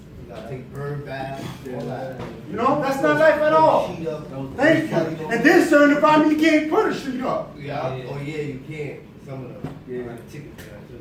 You gotta take bird baths. All that. You know, that's not life at all. Sheet up. Thank you. And then certain environment, you can't put a sheet up. Yeah. Oh yeah, you can't. Some of them. Yeah. Like tickets.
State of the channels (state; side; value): identical; both; correlation 1.00